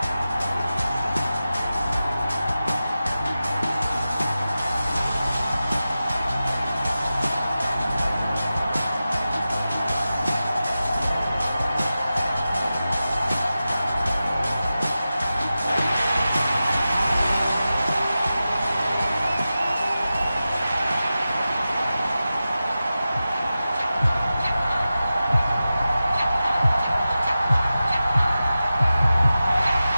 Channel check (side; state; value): both; inverted; correlation -0.94